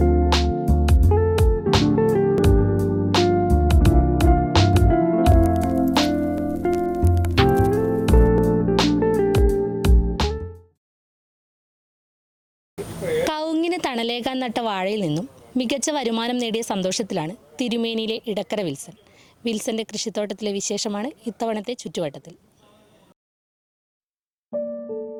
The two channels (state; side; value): identical; both; correlation 1.00